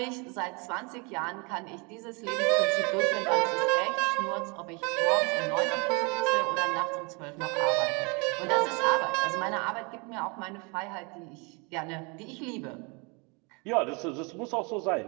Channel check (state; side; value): quieter; left; 30.9 dB